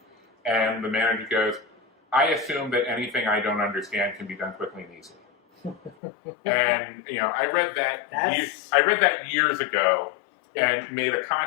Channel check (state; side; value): drops out; right; at 6.0 s